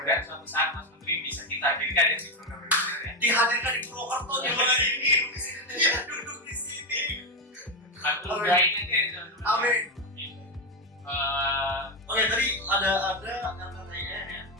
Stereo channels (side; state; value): both; normal; correlation 0.09